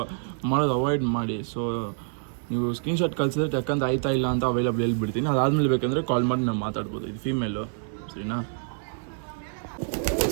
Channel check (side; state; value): left; silent; digital silence